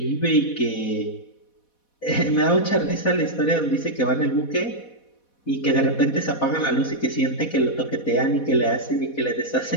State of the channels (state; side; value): late; right; 4.1 ms